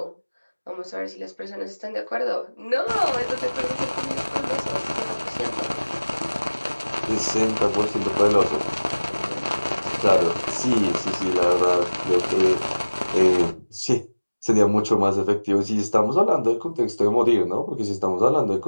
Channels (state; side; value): inverted; both; correlation -1.00